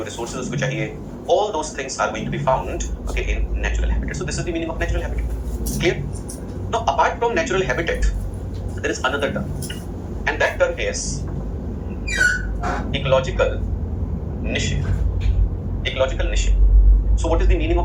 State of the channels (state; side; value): identical; both; correlation 1.00